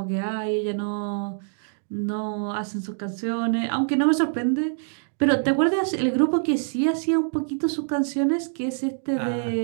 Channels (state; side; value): silent; left; digital silence